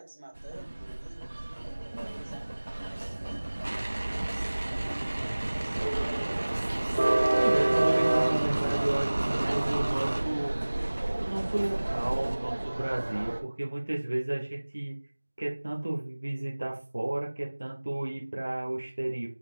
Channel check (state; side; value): inverted; both; correlation -1.00